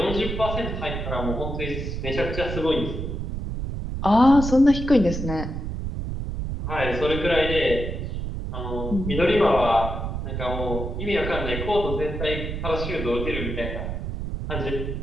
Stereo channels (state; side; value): noise; right; rumble, 4 dB below the sound